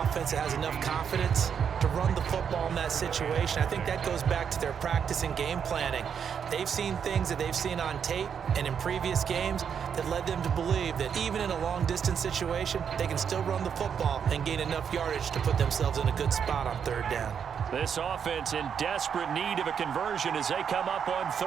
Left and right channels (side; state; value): left; quieter; 7.5 dB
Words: that has enough confidence to run the football in that situation. I think that goes back to their practice and game planning. They've seen things that they've seen on tape and in previous games that led them to believe that even in a long-distance situation, they can still run the football and gain enough yardage to put themselves in a good spot on 3rd down. This offense in desperate need of a conversion as they come up on